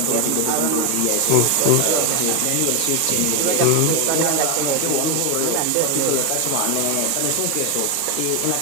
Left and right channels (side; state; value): both; different; correlation 0.01